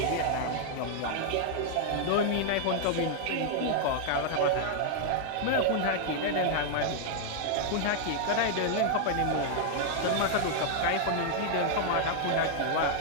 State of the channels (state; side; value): different; both; correlation 0.00